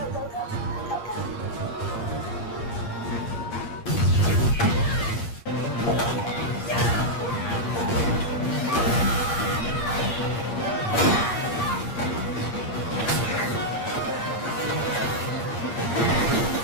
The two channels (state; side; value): late; right; 8.6 ms